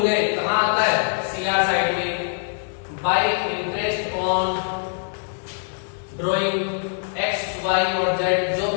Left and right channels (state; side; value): silent; right; digital silence